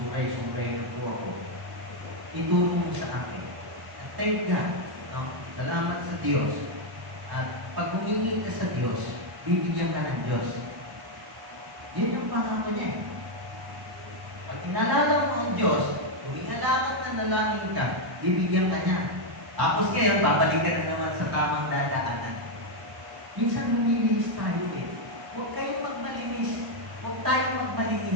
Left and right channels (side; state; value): left; late; 1.1 ms